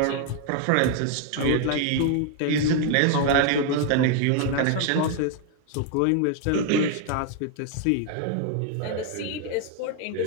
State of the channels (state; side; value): different; both; correlation 0.00